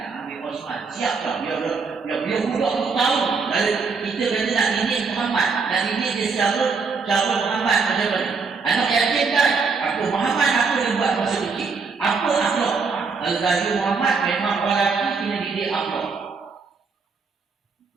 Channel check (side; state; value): left; quieter; 4.9 dB